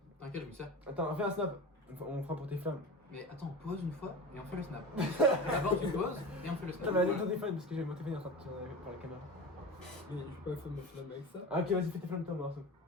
T'inquiète, je me sers. Attends, on fait un snap. On fera pour tes flammes. Mais attends, on pose une fois et on fait le snap. D'abord, tu poses et on fait le snap. Attends, mais allez ton téléphone parce que j'ai mon téléphone en train de tirer par la caméra. Mais je peux pas faire mon flamme avec ça. Ah, ok, vas-y, fais tes flammes, toi, Marceau.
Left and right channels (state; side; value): normal; both; correlation 0.31